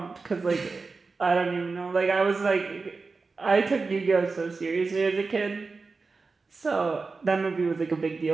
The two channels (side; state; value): left; quieter; 4.2 dB